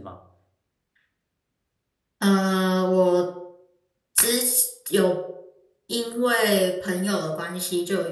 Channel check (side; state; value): both; identical; correlation 1.00